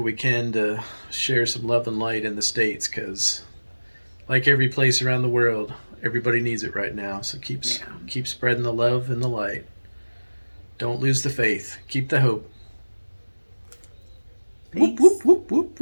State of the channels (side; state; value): both; inverted; correlation -1.00